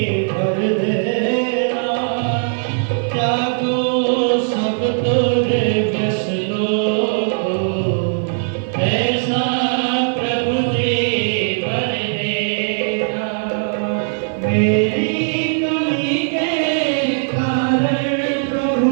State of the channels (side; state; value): left; silent; 58 dB below the other